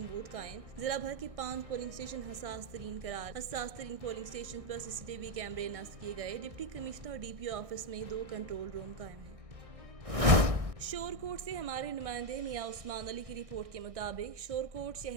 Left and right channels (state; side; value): late; left; 1.6 ms